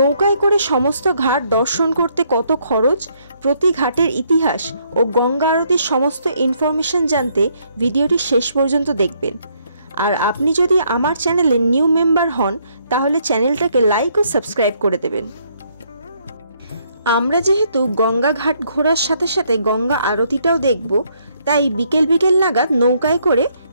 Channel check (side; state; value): both; inverted; correlation -0.70